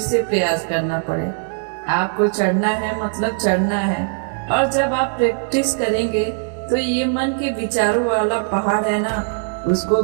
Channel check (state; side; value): silent; left; 66 dB below the other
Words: प्रयास करना पड़े। आपको चढ़ना है मतलब चढ़ना है। और जब आप प्रैक्टिस करेंगे तो ये मन के विचारों वाला पहाड़ है ना, उसको